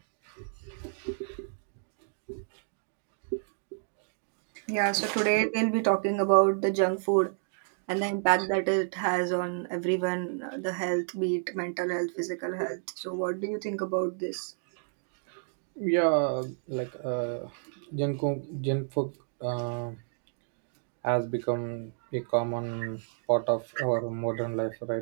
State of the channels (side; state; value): left; silent; digital silence